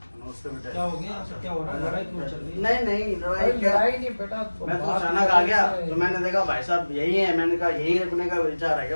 क्या हो गया, क्या हो रहा है, लड़ाई क्यों चल रही है? नहीं लड़ाई नहीं बेटा, मैं तो अचानक आ गया तो मैंने देखा भाई साहब यही है, मैंने कहा यही रखने का विचार है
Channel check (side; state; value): both; inverted; correlation -1.00